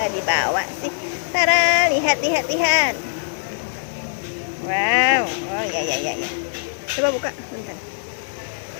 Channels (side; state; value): right; silent; digital silence